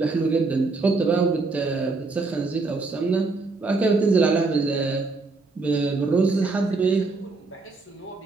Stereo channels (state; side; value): quieter; left; 3.7 dB